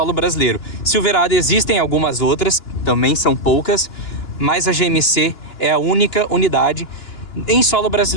brasileiro. Silverado existem algumas outras, também são poucas, mas a GMC é a única unidade em solo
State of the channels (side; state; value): right; late; 2.9 ms